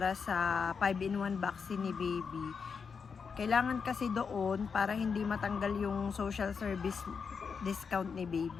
sa 5-in-1 vaccine ni baby. Kailangan kasi doon para hindi matanggal yung social service discount ni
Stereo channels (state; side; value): quieter; right; 5.8 dB